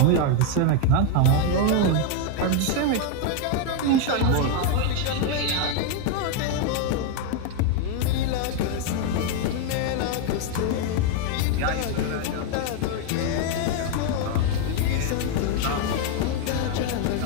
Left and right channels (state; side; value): different; both; correlation 0.01